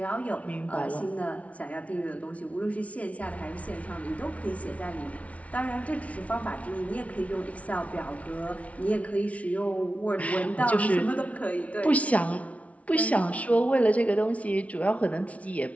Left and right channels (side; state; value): right; late; 0.066 ms